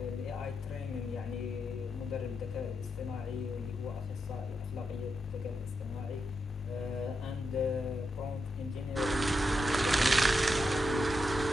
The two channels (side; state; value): both; normal; correlation 0.85